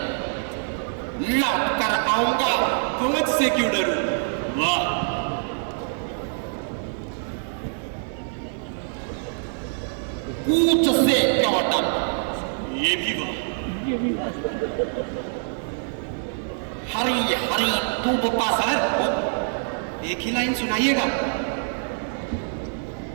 लौट कर आऊंगा। फौज से क्यों डरूं? वाह, कूच से क्यों डर? ये भी वाह। हरी हरी धूप का सर, एक ही लाइन सुनाइएगा।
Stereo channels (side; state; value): left; silent; digital silence